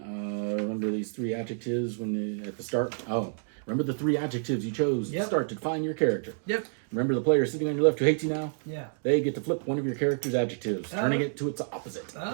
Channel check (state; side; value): silent; left; digital silence